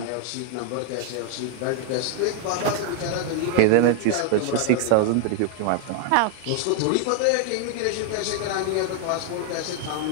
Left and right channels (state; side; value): different; both; correlation 0.00